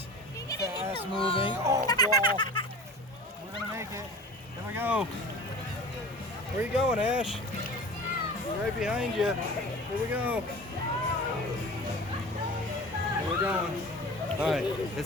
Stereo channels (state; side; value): normal; both; correlation 0.38